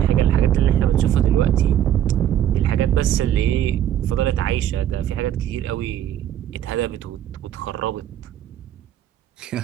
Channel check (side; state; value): left; quieter; 10.9 dB